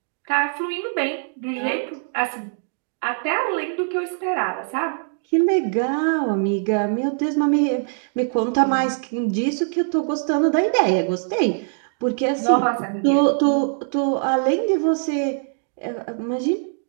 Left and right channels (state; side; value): silent; left; 64 dB below the other